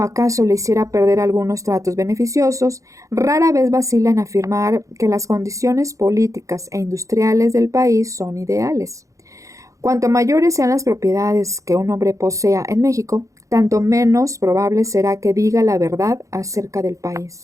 le hiciera perder algunos tratos beneficiosos, rara vez vacila en afirmar que las condiciones políticas e industriales del país son ideales. Cuanto mayores sean las propiedades que un hombre posea en México, tanto menos probable será que diga la verdad acerca del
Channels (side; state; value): left; late; 0.15 ms